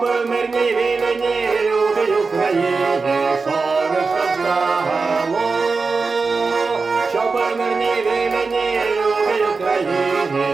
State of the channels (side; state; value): left; quieter; 4.4 dB